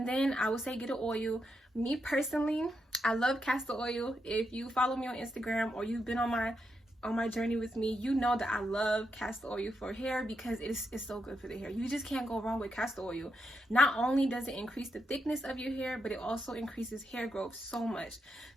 then I would say get an oil. Me personally, I love castor oil. If you follow me on Instagram or you've been on my journey with me, you know that I love castor oil for hair, because it's so good for the hair. You just can't go wrong with castor oil. Not only does it increase the thickness of your hair, but it also increases hair growth so much.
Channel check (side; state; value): both; normal; correlation 0.83